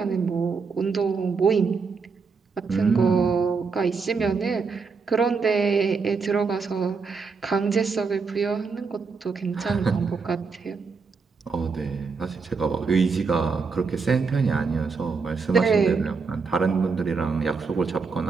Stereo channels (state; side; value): quieter; left; 4.9 dB